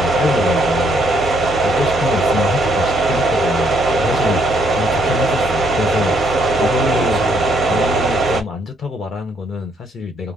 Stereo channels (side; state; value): both; normal; correlation 0.70